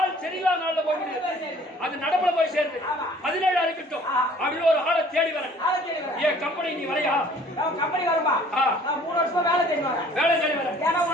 சரியில்லா நாள்ல போய் முடியுது. அது நடப்புல போய் சேருது. 17 இருக்கட்டும் அப்படின்னு ஒரு ஆளை தேடி வரேன். ஏன் கம்பெனி நீ வரையா? கம்பெனி வருமா? நான் 3 வருஷமா வேலை தேடி வரேன். ஏன்னா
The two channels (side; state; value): both; normal; correlation 0.53